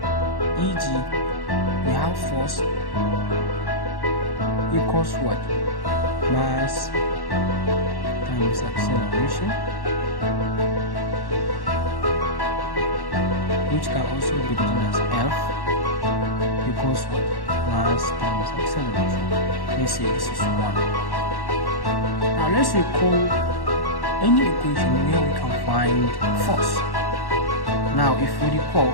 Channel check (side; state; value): right; late; 1.1 ms